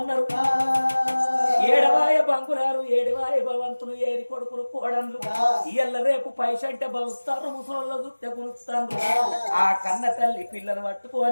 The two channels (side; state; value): both; inverted; correlation -1.00